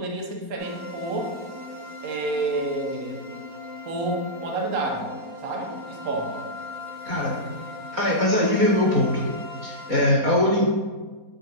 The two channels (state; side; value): late; left; 4.2 ms